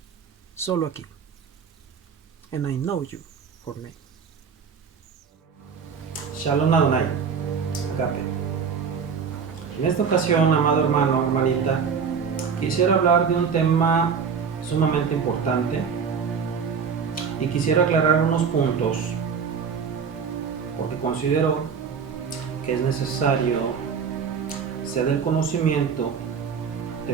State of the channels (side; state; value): left; quieter; 6.3 dB